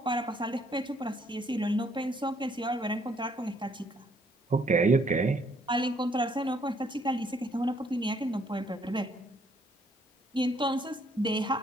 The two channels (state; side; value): normal; both; correlation 0.67